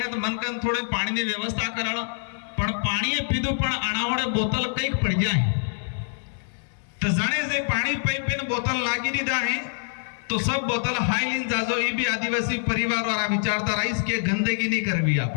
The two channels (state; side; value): silent; right; digital silence